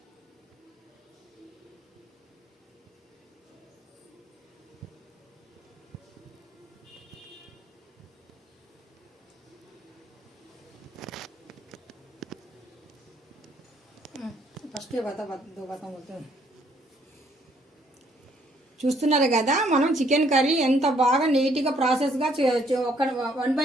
ఫస్ట్ చూస్తున్నారు కదా మనం చికెన్ కర్రీ ఎంత బాగా నీట్గా ప్రాసెస్గా ఒక 1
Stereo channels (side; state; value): both; normal; correlation 0.67